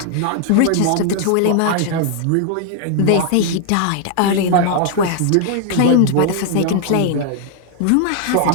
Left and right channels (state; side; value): different; both; correlation 0.00